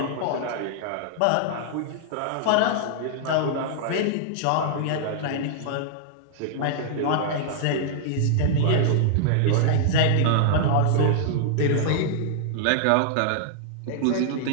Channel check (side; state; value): both; different; correlation -0.01